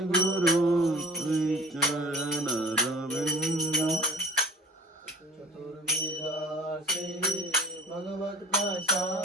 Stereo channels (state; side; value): normal; both; correlation 0.42